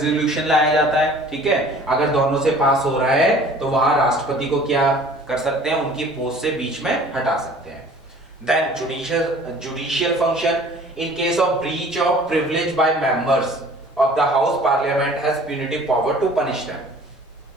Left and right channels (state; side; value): normal; both; correlation 0.49